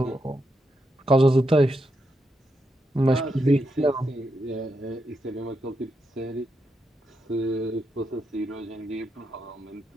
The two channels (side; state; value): both; normal; correlation 0.83